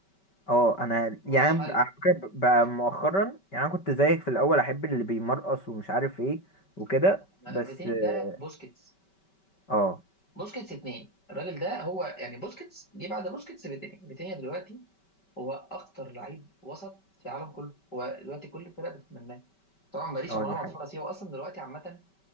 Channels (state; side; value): late; right; 5.2 ms